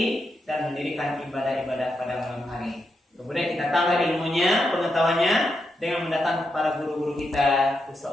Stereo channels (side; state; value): both; normal; correlation 0.84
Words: dan mendirikan ibadah-ibadah pada malam hari. Kemudian kita tambah ilmunya, pengetahuannya dengan mendatangkan para guru-guru kita,